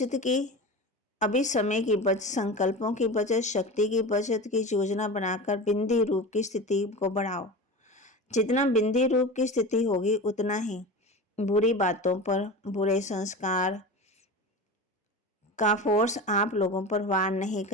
की, अभी समय की बचत, संकल्पों की बचत, शक्ति की बचत की योजना बनाकर बिंदी रूप की स्थिति को बढ़ाओ। जितना बिंदी रूप की स्थिति होगी उतना ही बुरी बातों पर, बुरे संस्कार का फोर्स आप लोगों पर वार नहीं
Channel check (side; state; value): both; normal; correlation 0.30